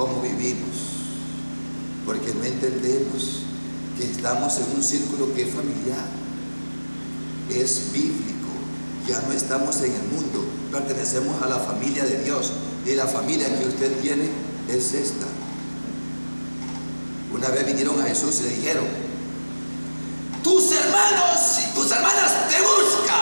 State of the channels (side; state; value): both; inverted; correlation -1.00